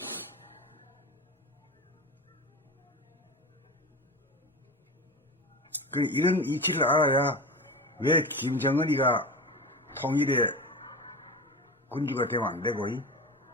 이런 이치를 알아야 왜 김정은이가 통일의 군주가 되면 안 되고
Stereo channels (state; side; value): normal; both; correlation 0.28